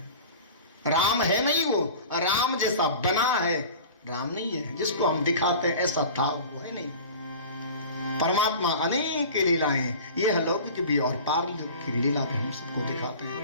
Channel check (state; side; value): inverted; both; correlation -0.38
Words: राम है नहीं, वो राम जैसा बना है, राम नहीं है। जिसको हम दिखाते हैं ऐसा था वो है नहीं। परमात्मा अनेक लीलाएं, ये अलौकिक भी और पारलौकिक की लीला भी हम सबको दिखाते हैं।